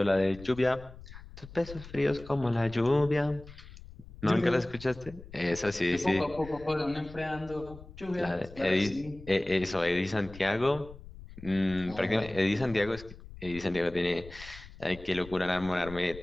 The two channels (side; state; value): left; noise; rumble, 17 dB below the sound